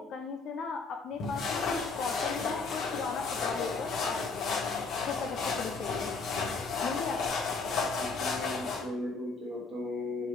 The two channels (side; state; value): right; quieter; 4.2 dB